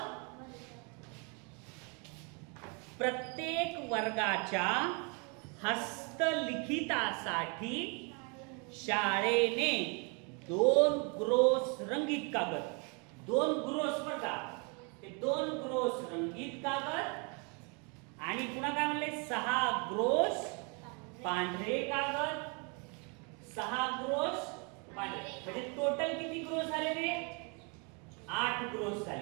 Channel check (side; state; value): left; quieter; 34.1 dB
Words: प्रत्येक वर्गाच्या हस्तलिखितासाठी शाळेने 2 ग्रोस रंगीत कागद, 2 ग्रोस बर का, ते 2 ग्रोस रंगीत कागद आणि पुन्हा काय म्हणले? 6 ग्रोस पांढरे कागद, 6 ग्रोस पांढरे. म्हणजे टोटल किती ग्रोस झाले रे? 8 ग्रोस